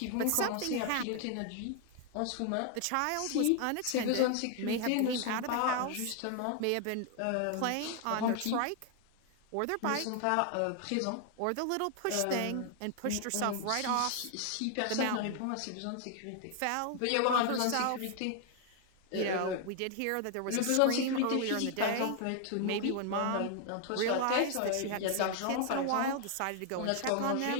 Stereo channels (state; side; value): different; both; correlation 0.00